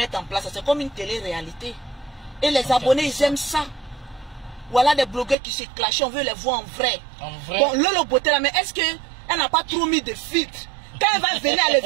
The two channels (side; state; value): left; drops out; at 5.4 s